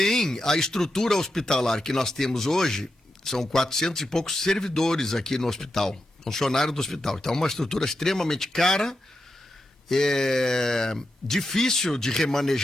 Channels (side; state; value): both; normal; correlation 0.88